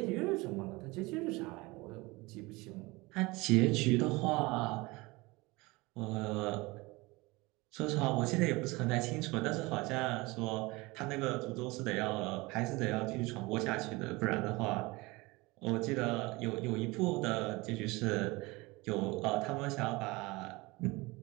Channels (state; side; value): quieter; left; 23.2 dB